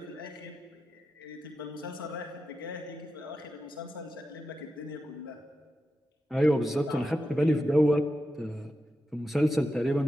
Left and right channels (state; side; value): normal; both; correlation 0.89